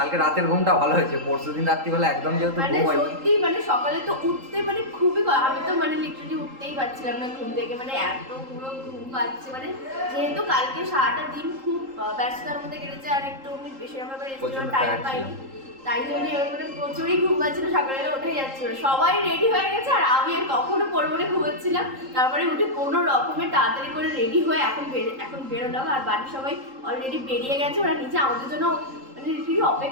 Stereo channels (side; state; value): left; late; 3.8 ms